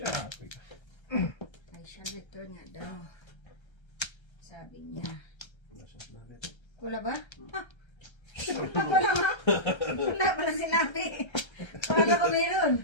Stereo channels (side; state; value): right; late; 1.3 ms